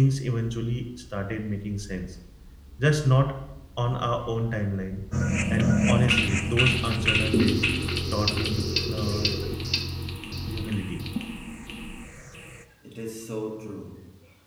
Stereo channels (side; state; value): both; identical; correlation 1.00